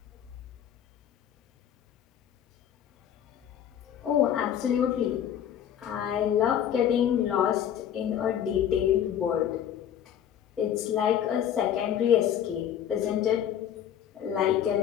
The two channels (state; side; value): quieter; right; 9.8 dB